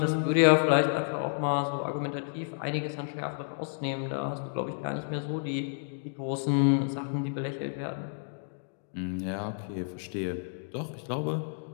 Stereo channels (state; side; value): silent; right; digital silence